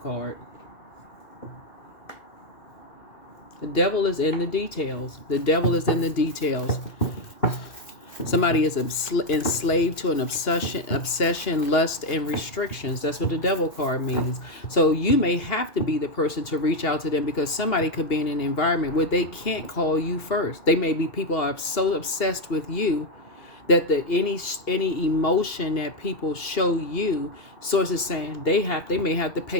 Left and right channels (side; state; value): right; late; 2.8 ms